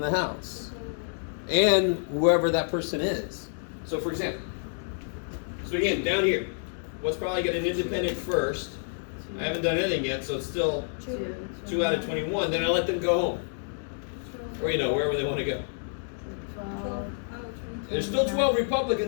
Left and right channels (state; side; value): silent; right; 59 dB below the other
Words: the house. And whoever that person is. So for example, so again, down here, what's probably got an independent first? I haven't done anything yet, so it's still 2 out of 21. Then I let them go home. Or, wherever they want to go. 12 out of 20. There's still 12